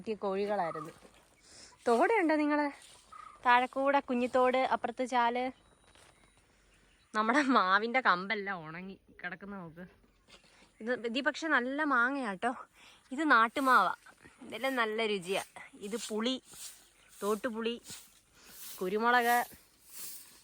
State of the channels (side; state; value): both; identical; correlation 1.00